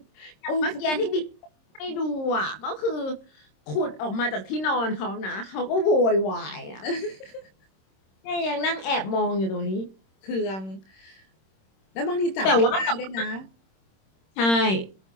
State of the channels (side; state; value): right; late; 26 ms